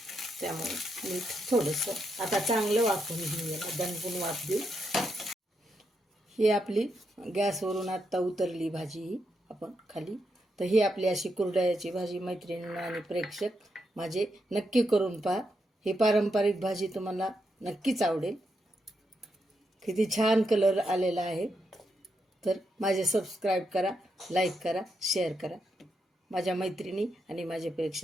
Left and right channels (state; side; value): normal; both; correlation 0.82